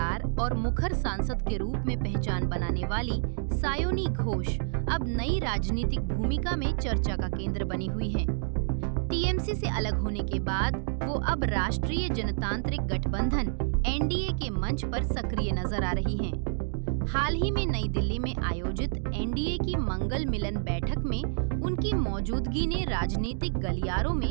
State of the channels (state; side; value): silent; left; digital silence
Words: और मुखर सांसद के रूप में पहचान बनाने वाली सायोनी घोष अब नई राजनीतिक भूमिका में चर्चा का केंद्र बनी हुई हैं। टीएमसी से अलग होने के बाद वो अब राष्ट्रीय जनतांत्रिक गठबंधन एनडीए के मंच पर सक्रिय नजर आ रही हैं। हाल ही में नई दिल्ली में आयोजित एनडीए की मंगल मिलन बैठक में उनकी मौजूदगी ने राजनीतिक गलियारों